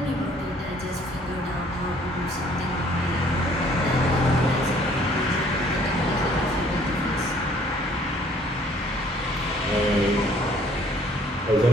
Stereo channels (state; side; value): normal; both; correlation 0.59